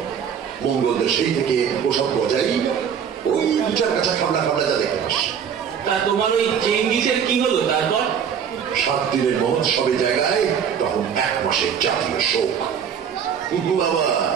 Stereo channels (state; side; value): quieter; left; 7.8 dB